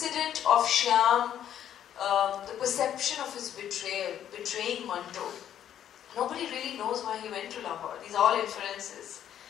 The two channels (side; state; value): right; quieter; 10.3 dB